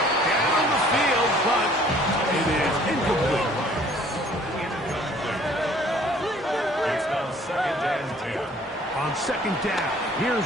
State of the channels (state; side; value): normal; both; correlation 0.56